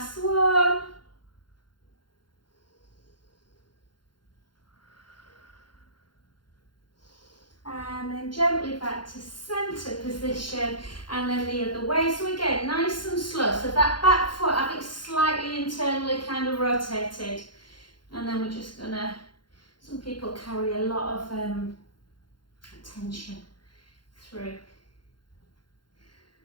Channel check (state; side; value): late; right; 0.72 ms